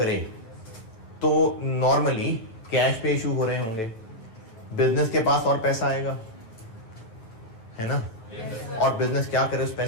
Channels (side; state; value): right; late; 9.1 ms